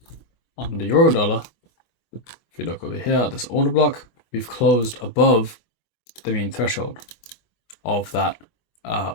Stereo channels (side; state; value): right; late; 25 ms